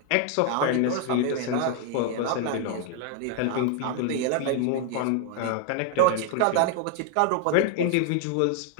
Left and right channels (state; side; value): different; both; correlation 0.00